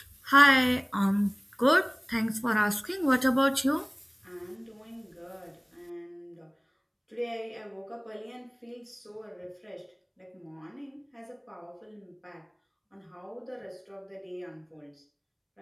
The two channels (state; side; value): identical; both; correlation 1.00